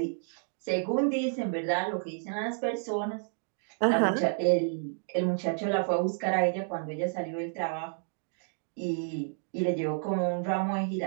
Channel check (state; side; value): silent; left; digital silence